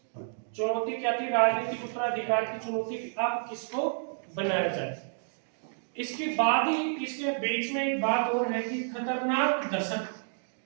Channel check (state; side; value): silent; left; digital silence